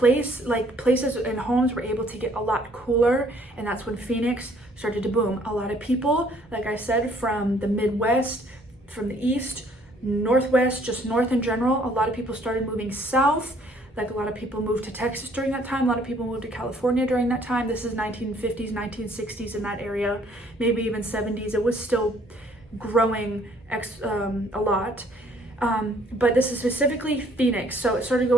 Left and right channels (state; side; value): normal; both; correlation 0.61